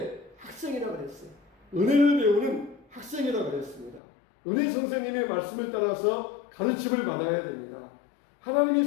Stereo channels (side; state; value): right; drops out; at 4.0 s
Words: 학생이라 그랬어요. 은혜를 배우는 학생이라 그랬습니다. 은혜 선생님의 말씀을 따라서 가르침을 받아야 됩니다. 하나님이